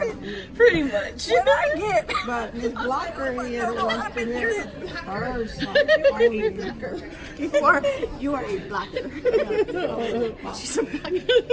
to eat it. Pretty much. What I get? But Miss Blocker here wants to hear her song. You are a blacker. She's a blacker.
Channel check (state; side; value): identical; both; correlation 1.00